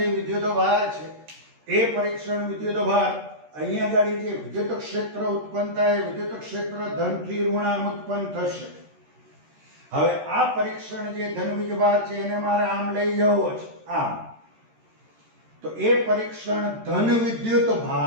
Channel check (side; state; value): left; late; 13 ms